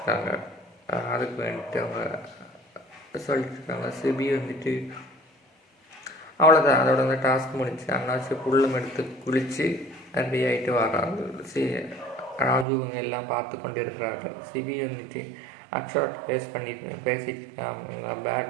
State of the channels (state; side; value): drops out; left; at 12.7 s